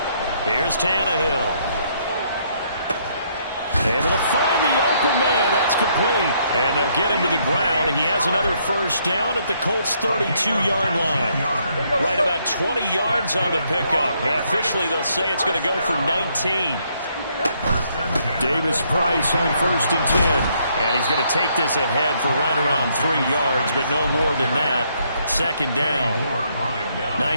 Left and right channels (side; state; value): both; inverted; correlation -0.71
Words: Here's Tannehill. Able to find the open man. That's complete. And they'll get him to the ground. He has another first down at the Colts' 32-yard line. Right about 20 yards on the pickup. And officially, they'll say it's going to go for 19. Davis Price on 1st and 10. And he's going to take this ahead for right around 3 yards, but no more than that. 2nd down.